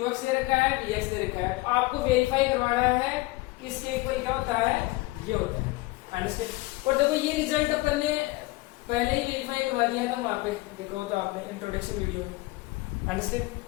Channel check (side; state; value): right; quieter; 21.1 dB